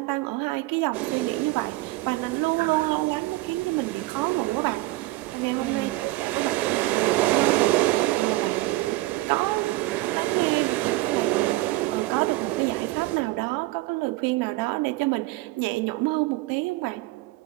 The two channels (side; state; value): left; quieter; 18.9 dB